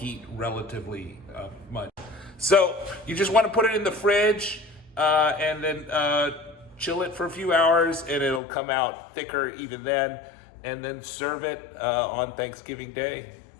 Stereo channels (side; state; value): right; drops out; at 8.4 s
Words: relatively much. So you just want to put it in the fridge and then chill it for a few hours, and it'll come out thicker even then. And then serve it on Thanksgiving Day.